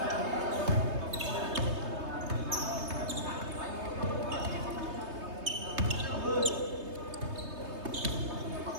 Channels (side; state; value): left; late; 3.2 ms